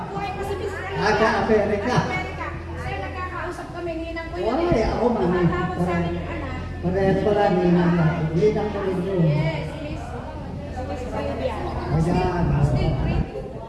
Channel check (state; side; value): identical; both; correlation 1.00